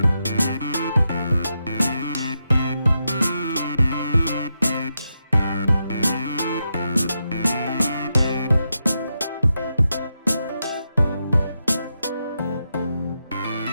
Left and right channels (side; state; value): both; inverted; correlation -0.86